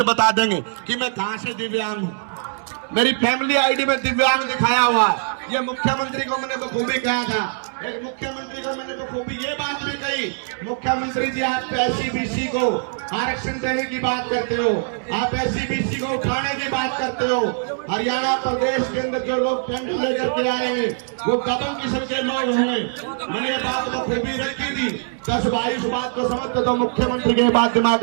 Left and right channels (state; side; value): silent; left; 64 dB below the other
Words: बता देंगे कि मैं कहां से दिव्यांग हूं। मेरी फैमिली आईडी में दिव्यांग दिखाया हुआ है। ये मुख्यमंत्री को मैंने बखूबी कहा था। एक मुख्यमंत्री को मैंने बखूबी ये बात भी कही, मुख्यमंत्री जी आप एससी-बीसी को आरक्षण देने की बात करते हो, आप एससी-बीसी को उठाने की बात करते हो। हरियाणा प्रदेश के अंदर जो लोग टेंडर लेकर के आएंगे वो दबंग किस्म के लोग होंगे। मैंने ये बात बखूबी रखी थी। 10-22 बात को समझते तो मुख्यमंत्री की बात दिमाग